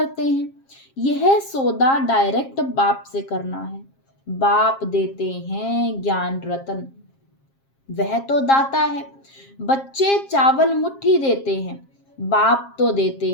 हैं। यह सौदा डायरेक्ट बाप से करना है। बाप देते हैं ज्ञान रत्न, वह तो दाता है। बच्चे चावल मुट्ठी देते हैं, बाप तो देते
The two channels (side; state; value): right; late; 7.4 ms